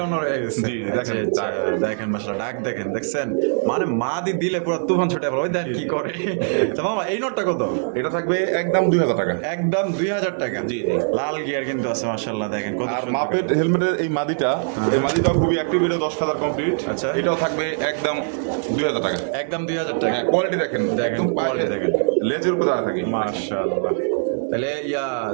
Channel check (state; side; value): silent; left; digital silence